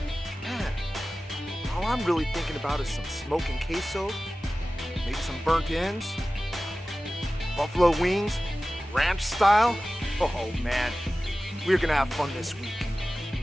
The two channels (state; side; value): normal; both; correlation 0.96